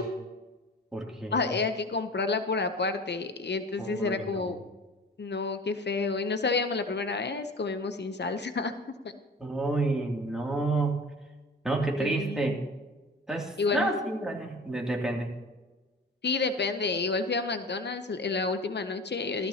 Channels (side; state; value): both; normal; correlation 0.39